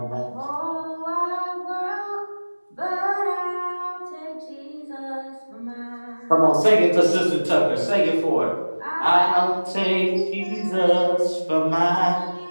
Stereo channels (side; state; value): both; inverted; correlation -1.00